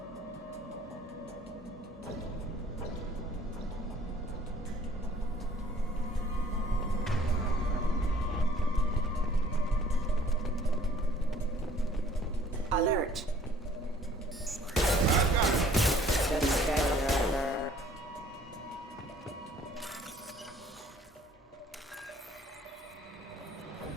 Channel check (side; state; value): both; normal; correlation 0.56